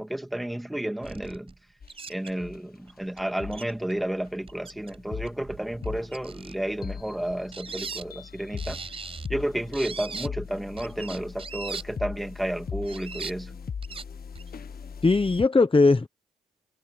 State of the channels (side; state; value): both; normal; correlation 0.89